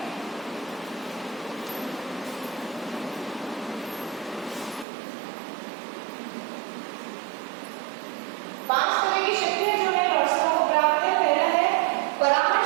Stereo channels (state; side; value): drops out; left; at 4.9 s